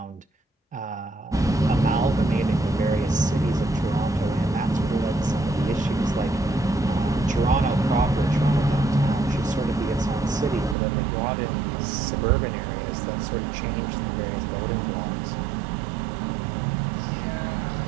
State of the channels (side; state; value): left; drops out; at 10.8 s